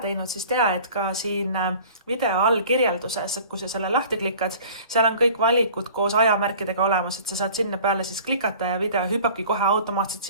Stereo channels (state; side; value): inverted; both; correlation -0.46